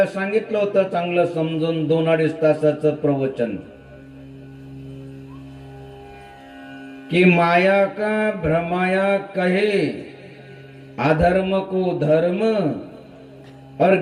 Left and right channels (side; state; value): both; identical; correlation 1.00